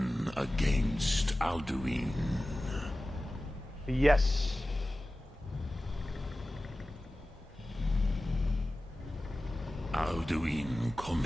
against Alduin. Yes. Alduin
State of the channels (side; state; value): both; normal; correlation 0.96